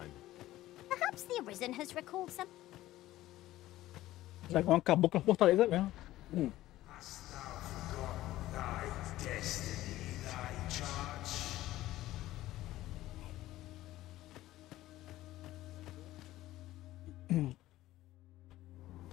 Perhaps the Arisen has recalled some. O dragão acabou com a fortaleza mesmo.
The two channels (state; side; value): quieter; right; 15.6 dB